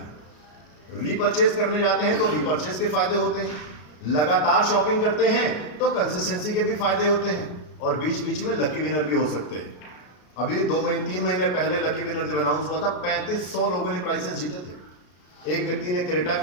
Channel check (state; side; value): late; right; 33 ms